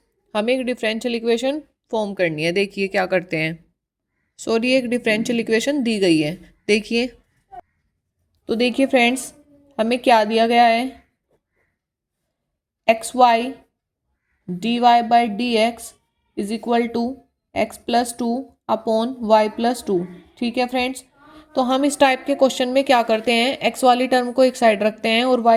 हमें एक डिफरेंशियल इक्वेशन फॉर्म करनी है। देखिए क्या करते हैं। सॉरी, एक डिफरेंशियल इक्वेशन दी गई है। देखिए, तो देखिए फ्रेंड्स हमें क्या दिया गया है। X y d y by d x is equal to x plus two upon y plus two. ठीक है फ्रेंड्स, तो हम इस टाइप के क्वेश्चन में क्या करते हैं, एक्स वाली टर्म को एक साइड रखते हैं और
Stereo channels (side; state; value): both; identical; correlation 1.00